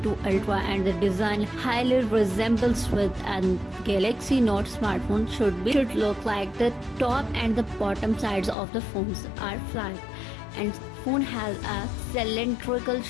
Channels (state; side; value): drops out; right; at 8.6 s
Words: Ultra, and the design highly resembles with a Galaxy Note smartphone should look like. The top and the bottom sides of the phones are flat, and phone has a cylindrical